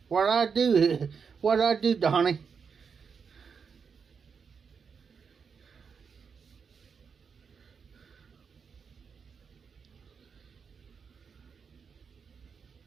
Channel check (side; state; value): left; quieter; 6.0 dB